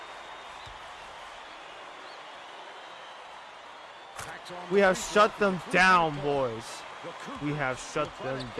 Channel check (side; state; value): both; identical; correlation 1.00